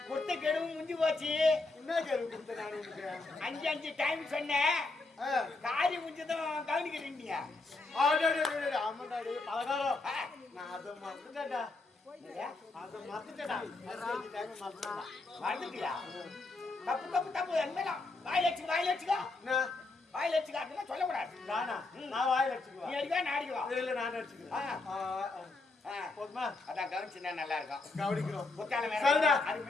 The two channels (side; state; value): right; quieter; 3.4 dB